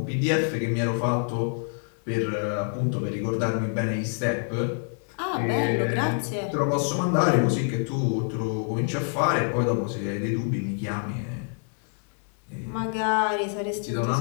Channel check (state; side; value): silent; right; 60 dB below the other